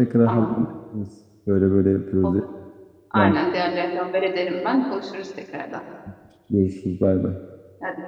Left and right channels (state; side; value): identical; both; correlation 1.00